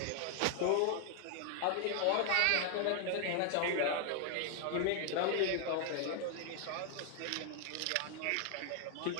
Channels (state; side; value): different; both; correlation 0.00